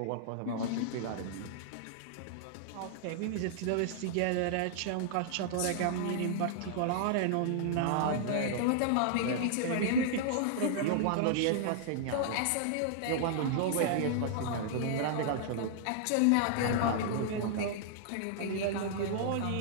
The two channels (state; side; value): different; both; correlation -0.01